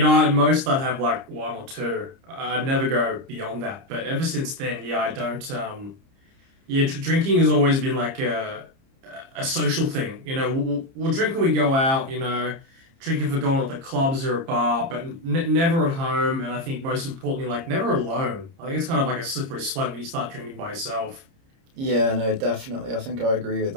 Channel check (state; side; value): late; left; 30 ms